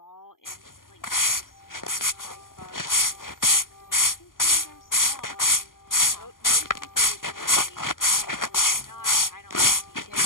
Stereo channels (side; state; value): right; late; 0.91 ms